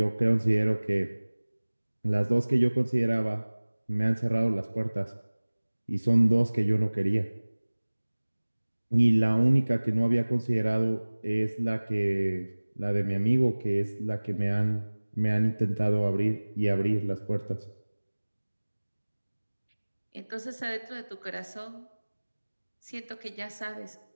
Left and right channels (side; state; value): both; inverted; correlation -1.00